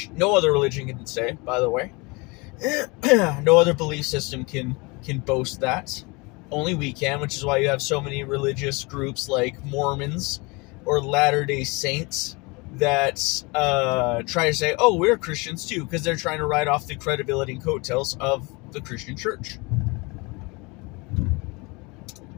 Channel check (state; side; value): quieter; right; 27.0 dB